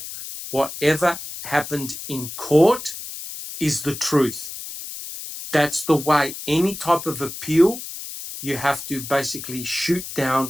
whatever happened in court is the truth. That's the way. Any type of appeal, you have to basically shoot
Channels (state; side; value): noise; left; hiss, 10 dB below the sound